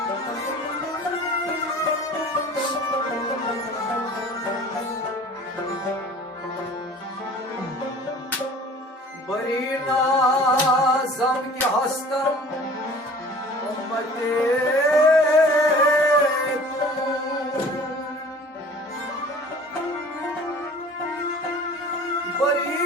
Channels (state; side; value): normal; both; correlation 0.46